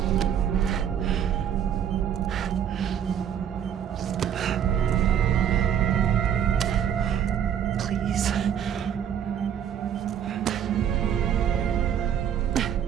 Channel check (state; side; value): quieter; left; 9.0 dB